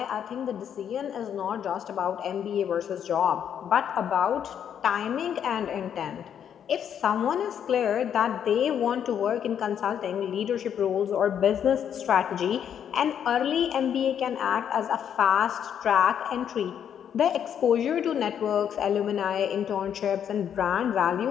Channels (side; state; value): right; quieter; 8.8 dB